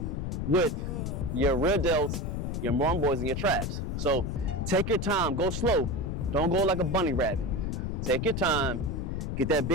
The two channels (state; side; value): noise; left; rumble, 2 dB below the sound